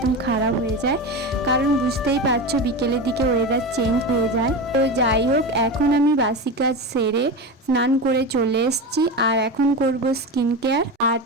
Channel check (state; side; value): normal; both; correlation 0.23